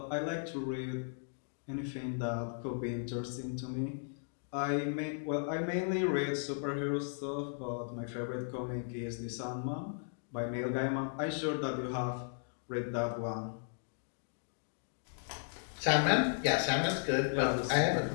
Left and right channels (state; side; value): silent; right; digital silence